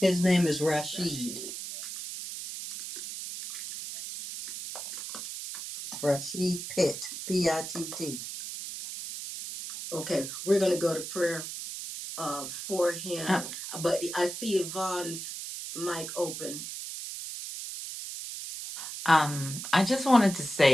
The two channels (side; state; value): right; noise; hiss, 8 dB below the sound